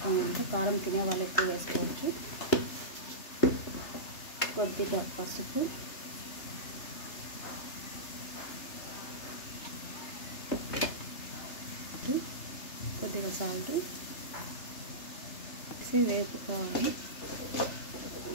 కారం తినే వాళ్ళు ఎక్కువ వేసుకోవచ్చు. కొద్దిగా పసుపు, కొద్దిగా సాల్ట్ వేసి వేపుకోవాలి.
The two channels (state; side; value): late; right; 3.3 ms